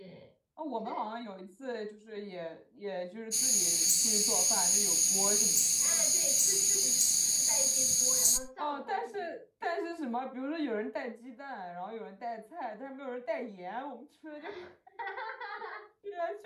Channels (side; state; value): both; identical; correlation 1.00